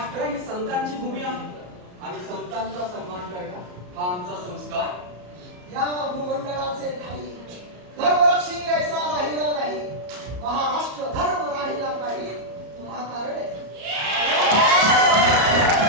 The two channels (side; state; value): left; late; 34 ms